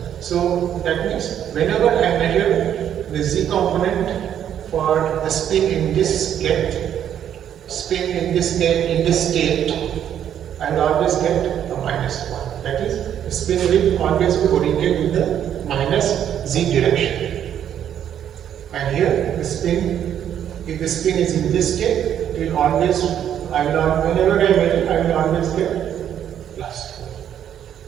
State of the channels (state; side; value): quieter; left; 9.8 dB